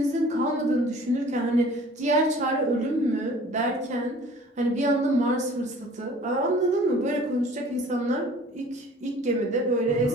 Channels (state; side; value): normal; both; correlation 0.49